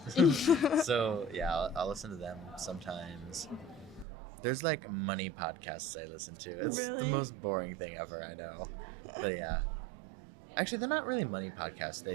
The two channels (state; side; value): drops out; left; at 4.0 s